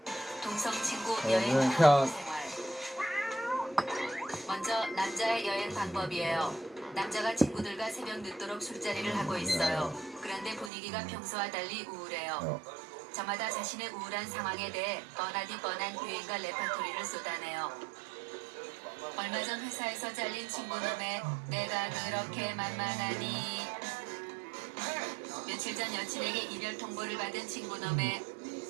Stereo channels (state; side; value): drops out; left; at 10.7 s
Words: 동성 친구 여행 탐구 생활. 먼저 남자의 여행 방법이에요. 남자가 친구들과 새벽 늦도록 술자리를 하고 있어요. 그런데 분위기가 평소와 달리 우울해요. 저마다 자신의 우울한 상황에 대해 뻔하디 뻔한 유행과 레파토리를 쏟아내요. 얼마 전 회사에서 잘린 친구놈의 내가 그렇게 만만하니, 며칠 전 여친에게 이별 통보를 받은 친구놈의